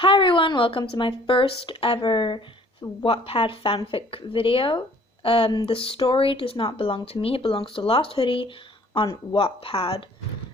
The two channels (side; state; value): both; normal; correlation 0.56